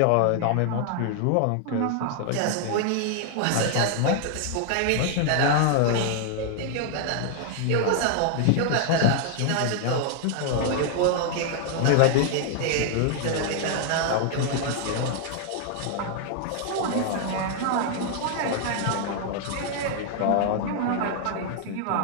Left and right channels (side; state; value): both; different; correlation 0.00